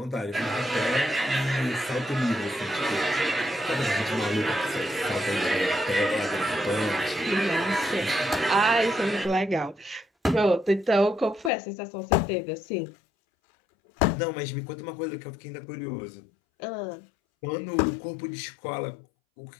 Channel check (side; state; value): right; drops out; at 11.5 s